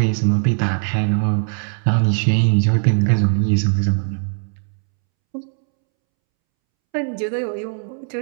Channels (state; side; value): silent; left; 66 dB below the other